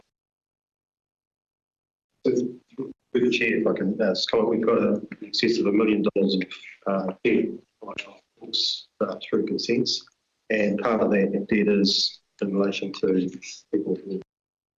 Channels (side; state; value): both; identical; correlation 1.00